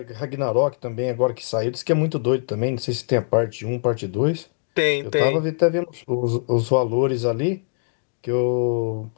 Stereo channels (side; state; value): right; silent; digital silence